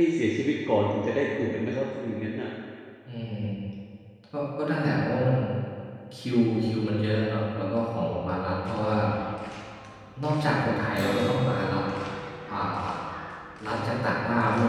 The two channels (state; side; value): identical; both; correlation 1.00